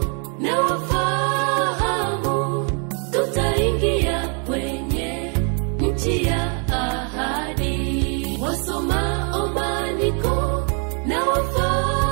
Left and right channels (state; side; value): quieter; left; 39.6 dB